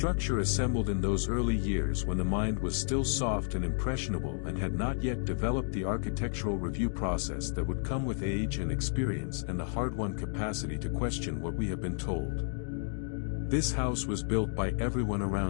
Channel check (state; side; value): silent; right; 57 dB below the other